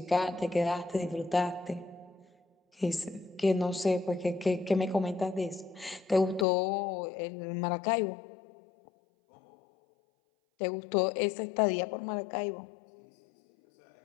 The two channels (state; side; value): drops out; right; at 6.5 s